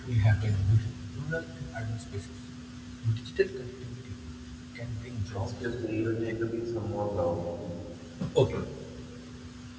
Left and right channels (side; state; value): both; identical; correlation 1.00